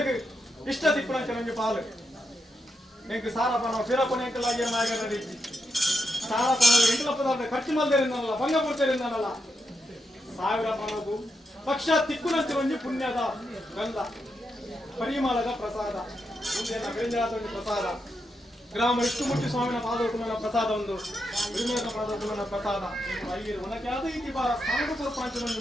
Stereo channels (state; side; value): normal; both; correlation 0.84